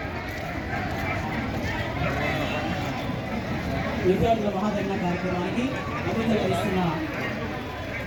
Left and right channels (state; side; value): identical; both; correlation 1.00